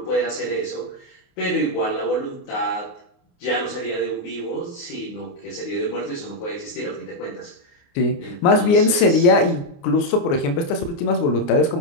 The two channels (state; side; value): late; right; 29 ms